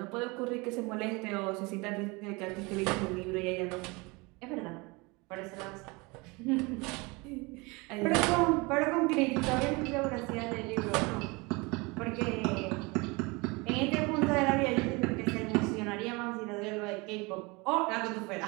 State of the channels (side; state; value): left; quieter; 26.1 dB